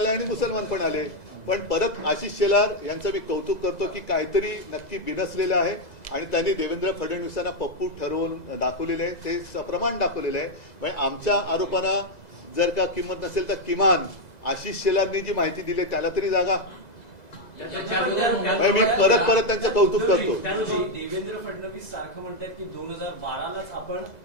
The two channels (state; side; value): late; right; 2.0 ms